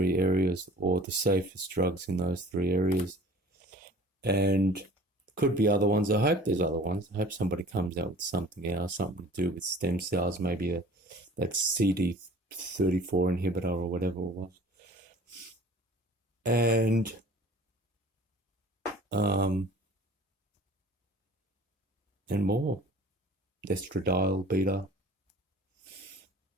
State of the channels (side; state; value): both; normal; correlation 0.47